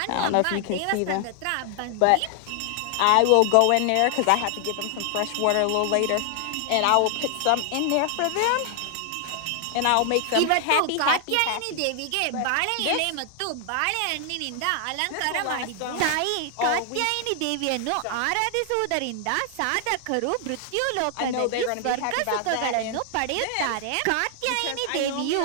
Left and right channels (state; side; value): different; both; correlation 0.00